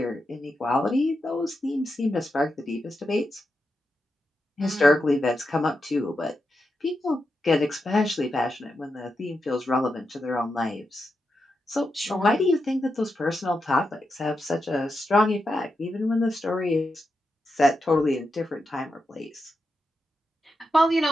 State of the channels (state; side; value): normal; both; correlation 0.87